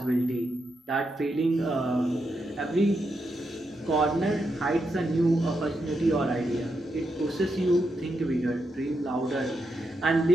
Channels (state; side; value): normal; both; correlation 0.84